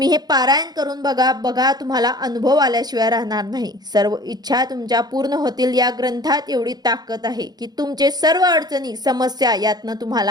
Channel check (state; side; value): late; left; 0.19 ms